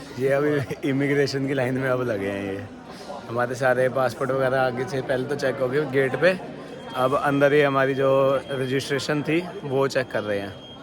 ये अभी इमिग्रेशन की लाइन में अब लगे हैं। ये हमारे सारे पासपोर्ट वगैरह आगे से पहले तो चेक हो गए गेट पे। अब अंदर ही हमारी जो रजिस्ट्रेशन थी वो चेक कर रहे हैं।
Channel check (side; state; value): both; identical; correlation 1.00